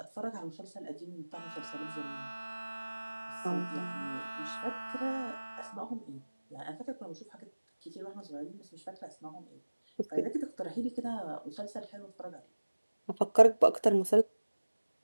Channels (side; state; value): both; inverted; correlation -1.00